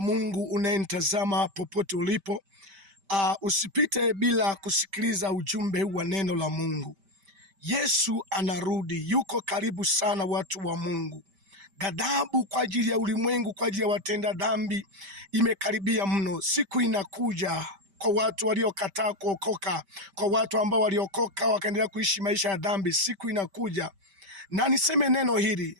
Mungu unayenitazama popote ulipo. Usipite bila kusikiliza ujumbe wa neno la Mungu. Yesu anarudi, yuko karibu sana, watu wa Mungu. Ghadhabu kwa ajili ya ulimwengu, kwa ajili ya watenda dhambi imekaribia mno. Siku inakuja kwa watu waliokataa kuokoka, kwa watu ambao waliokoka wakaendelea kuishi maisha ya dhambi. Siku inakuja, na niseme neno hili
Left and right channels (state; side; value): late; left; 5.1 ms